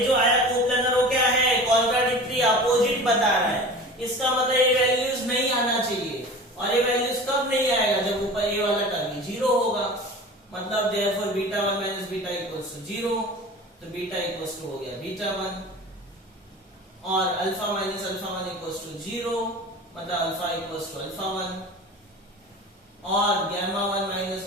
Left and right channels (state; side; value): normal; both; correlation 0.37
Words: आया कोप्लेनर वो क्या है? कॉन्ट्राडिक्टरी, अपोजिट बता रहा है। इसका मतलब ये वैल्यूज नहीं आना चाहिए, और ये वैल्यूज कब नहीं आएगा? जब ऊपर ये वाला टर्म 0 होगा। मतलब therefore beta 1 minus beta equals to 0, तो बीटा इक्वल्स टू हो गया बीटा 1, और alpha minus alpha 1 equals to 0, मतलब अल्फा इक्वल्स टू अल्फा 1, और gamma 1 minus